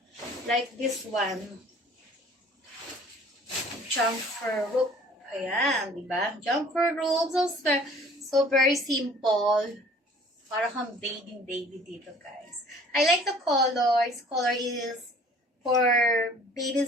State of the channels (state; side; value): normal; both; correlation 0.51